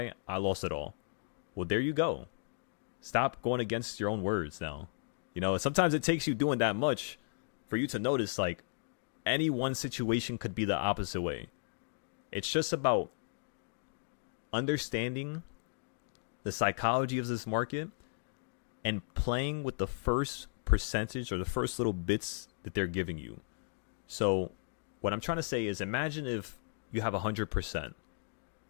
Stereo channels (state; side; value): silent; right; digital silence